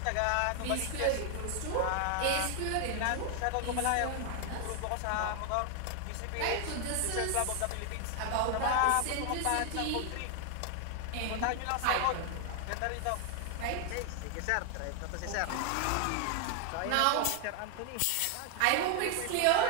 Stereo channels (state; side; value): different; both; correlation 0.00